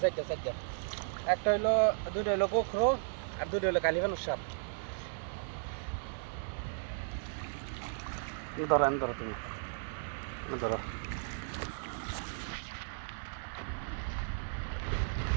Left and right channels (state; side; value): silent; left; 54 dB below the other